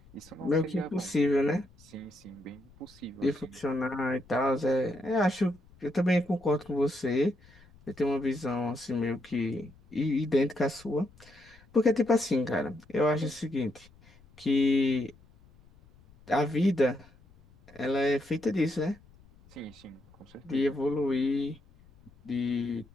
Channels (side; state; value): left; noise; rumble, 26 dB below the sound